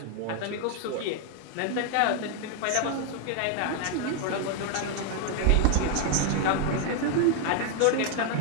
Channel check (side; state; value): both; different; correlation 0.00